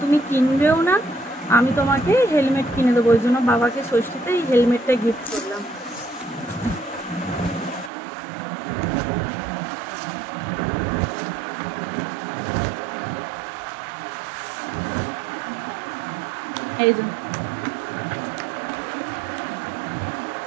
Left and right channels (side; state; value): left; drops out; at 7.9 s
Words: তুমি কিনবেও না, আমি তোমাকে হেলমেট কিনে দেবো। ওই জন্য বাবাকে ষষ্ঠীতে এই হেলমেটটা গিফট করলাম। এই যে